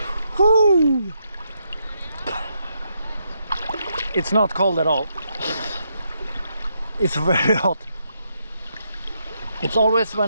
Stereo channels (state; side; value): inverted; both; correlation -0.79